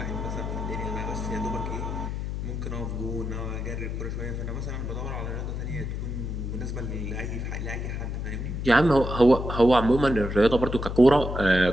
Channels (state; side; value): noise; left; hum, 4 dB below the sound